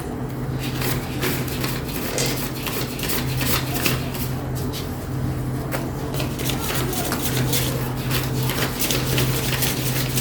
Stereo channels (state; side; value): identical; both; correlation 1.00